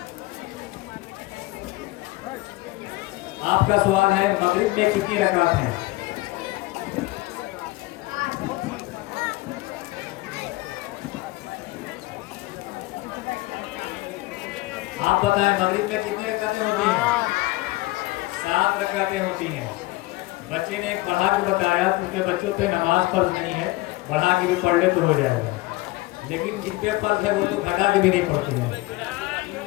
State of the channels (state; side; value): quieter; right; 20.3 dB